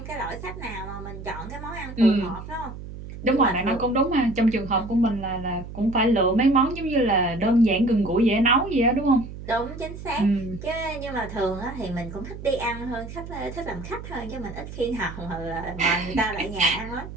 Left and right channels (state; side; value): noise; right; hum, 11 dB below the sound